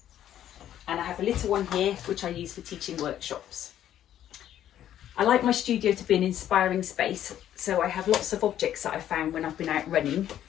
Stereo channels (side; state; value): right; quieter; 11.3 dB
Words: And I have a little one here which I use for teaching workshops. I like my studio to be an inspiring space, so I have lots of objects that I found when I've been out running.